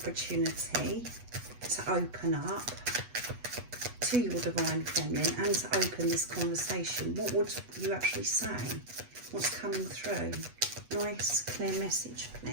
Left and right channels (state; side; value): late; left; 8.2 ms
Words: to open up to your Divine Feminine and to open this conversation, what would you actually say? What's coming through? Nice, clear message,